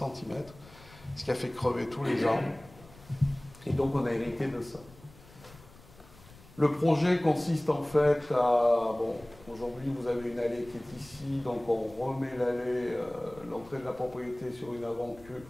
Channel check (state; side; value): noise; left; rumble, 22 dB below the sound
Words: ce qui a fait crever tous les arbres. Et donc on a hérité de ça. Le projet consiste en fait à... Bon, aujourd'hui vous avez une allée qui est ici, donc on remet l'allée, l'entrée de la propriété sur une